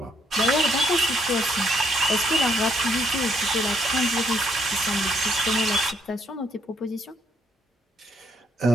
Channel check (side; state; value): both; normal; correlation 0.71